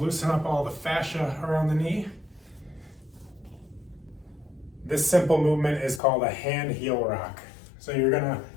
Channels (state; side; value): drops out; right; at 6.0 s